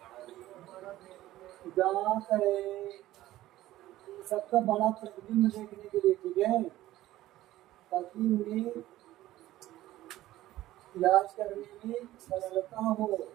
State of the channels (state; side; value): quieter; left; 15.3 dB